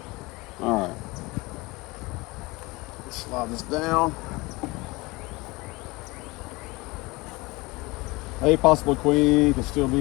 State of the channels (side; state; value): right; quieter; 23.2 dB